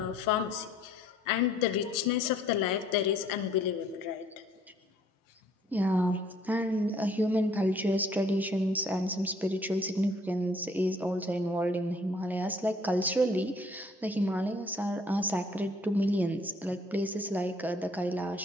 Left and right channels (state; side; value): normal; both; correlation 0.60